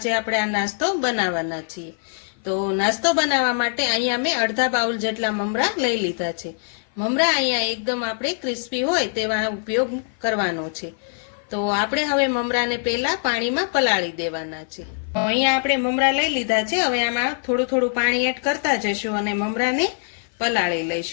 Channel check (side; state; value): right; silent; 55 dB below the other